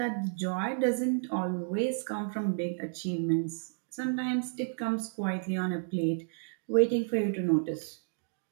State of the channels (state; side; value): silent; left; digital silence